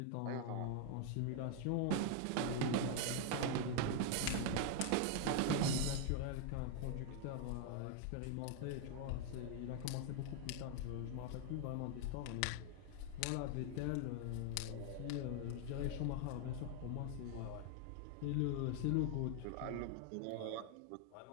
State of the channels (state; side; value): different; both; correlation 0.00